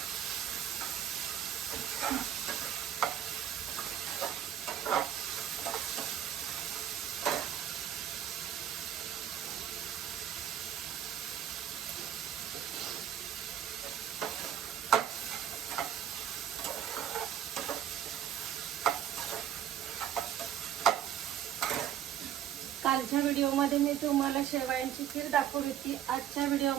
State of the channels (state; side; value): quieter; left; 10.1 dB